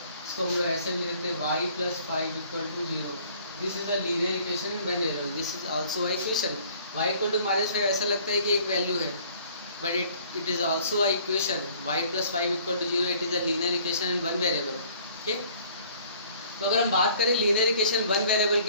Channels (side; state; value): both; inverted; correlation -0.55